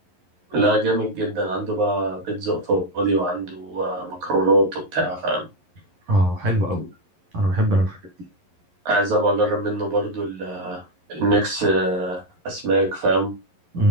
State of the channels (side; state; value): left; late; 11 ms